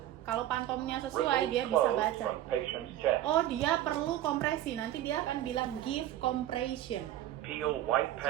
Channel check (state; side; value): quieter; left; 13.1 dB